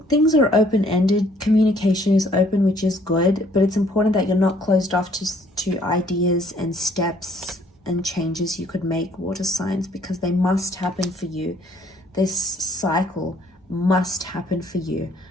are open-ended. Communication is open, which is good, but it's important that you're not closed off to ideas and steps and changes you could make, water signs, because they must happen for you. This cycle must happen for you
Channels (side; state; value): both; normal; correlation 0.62